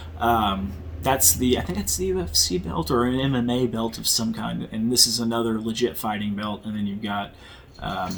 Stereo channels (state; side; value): identical; both; correlation 1.00